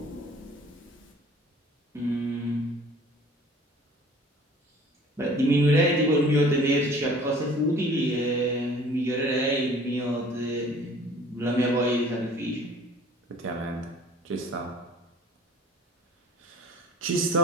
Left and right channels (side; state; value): both; normal; correlation 0.49